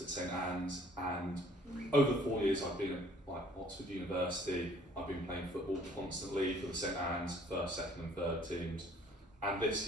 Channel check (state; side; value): normal; both; correlation 0.57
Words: at St Anne's, and over the 4 years I've been at Oxford University, I've been playing football constantly for the St Anne's first, second, and third teams. And this